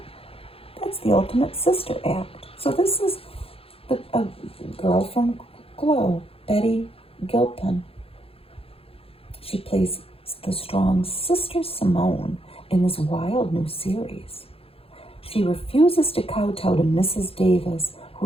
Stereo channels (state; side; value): late; right; 0.27 ms